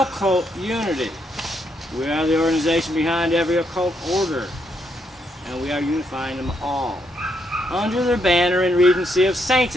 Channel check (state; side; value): normal; both; correlation 0.77